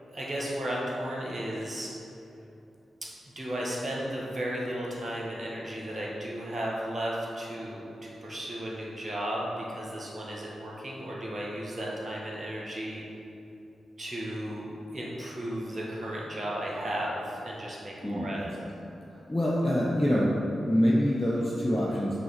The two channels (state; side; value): normal; both; correlation 0.92